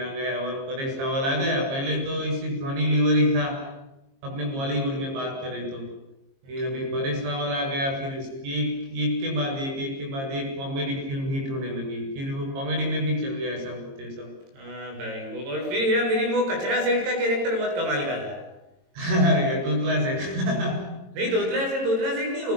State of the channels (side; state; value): left; late; 22 ms